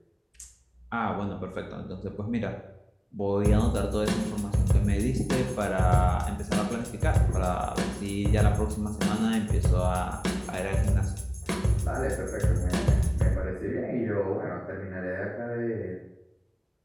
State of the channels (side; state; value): both; identical; correlation 1.00